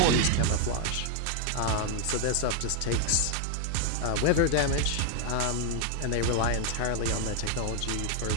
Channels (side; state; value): both; different; correlation 0.00